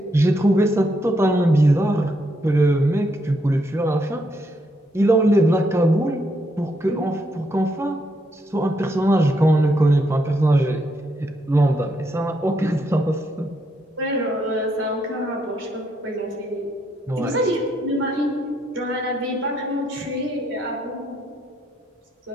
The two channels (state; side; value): normal; both; correlation 0.76